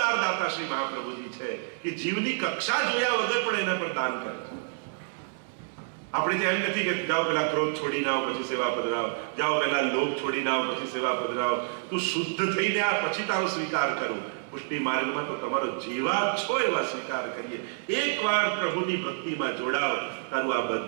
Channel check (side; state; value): left; silent; 59 dB below the other